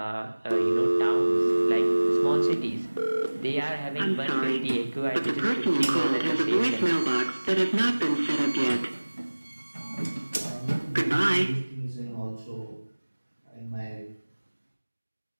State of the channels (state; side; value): inverted; both; correlation -1.00